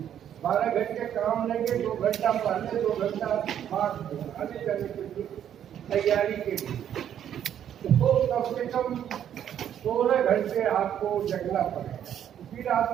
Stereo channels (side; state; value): left; quieter; 9.9 dB